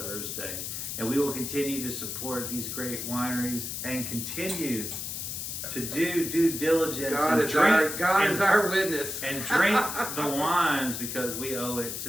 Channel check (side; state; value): left; noise; hiss, 5 dB below the sound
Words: And we will continue to support these great wineries and continue to do due diligence. God is our witness. And drink the wines because we owe it to